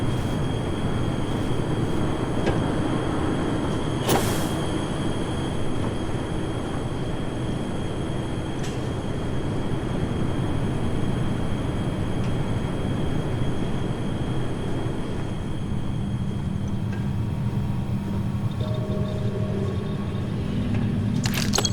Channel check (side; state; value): both; identical; correlation 1.00